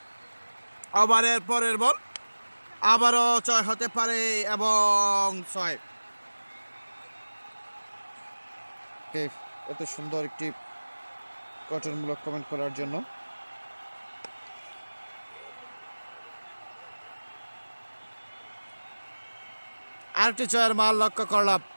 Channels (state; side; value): inverted; both; correlation -1.00